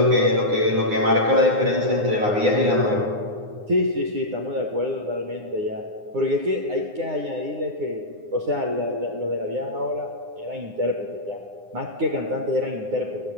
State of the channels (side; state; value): left; late; 9.7 ms